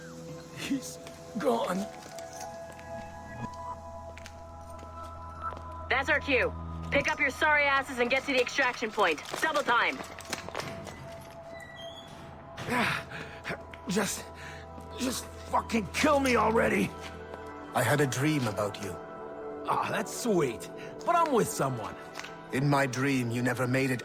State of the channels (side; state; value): both; identical; correlation 1.00